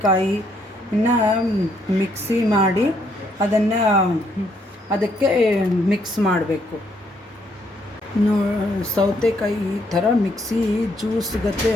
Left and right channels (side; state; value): both; normal; correlation 0.71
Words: ಮಿಕ್ಸಿ ಮಾಡಿ ಅದಕ್ಕೆ ಮಿಕ್ಸ್ ಮಾಡಬೇಕು. ಸೌತೆಕಾಯಿ ಈ ಥರ ಮಿಕ್ಸಿ ಜ್ಯೂಸ್ ಗತೆ